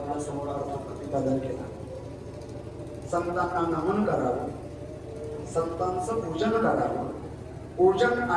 समोर अर्थ प्रतिपादन केला. संतांना नमन करावं, संतांचं पूजन करावं. पूजन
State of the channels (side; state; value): both; identical; correlation 1.00